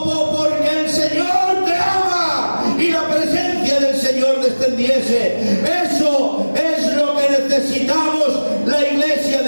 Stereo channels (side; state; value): both; inverted; correlation -1.00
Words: el Señor te ama y la presencia del Señor descendiese. Eso es lo que necesitamos la iglesia